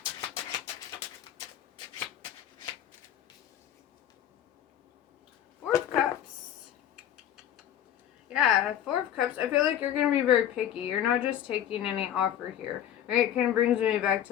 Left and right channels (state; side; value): quieter; right; 10.6 dB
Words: Four of Cups. Yeah, Four of Cups. I feel like you're going to be very picky. You're not just taking any offer here. Right? It kind of brings me back